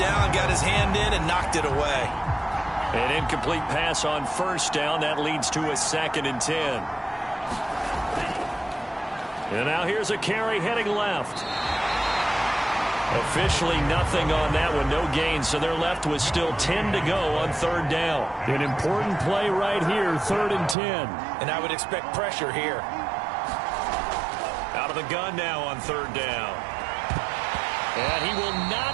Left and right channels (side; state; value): left; drops out; at 20.8 s